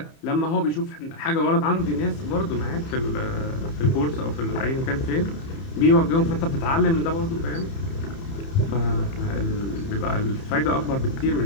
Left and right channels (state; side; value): late; right; 30 ms